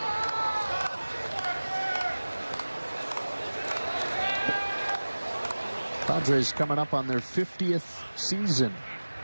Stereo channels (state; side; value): inverted; both; correlation -1.00